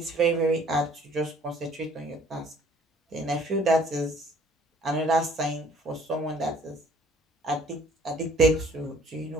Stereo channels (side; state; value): both; normal; correlation 0.57